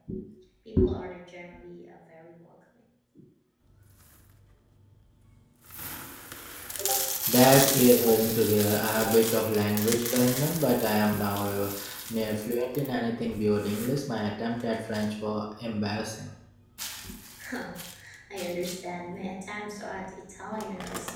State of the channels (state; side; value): identical; both; correlation 1.00